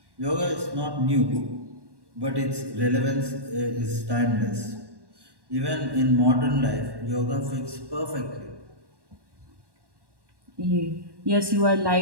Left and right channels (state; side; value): late; left; 1.1 ms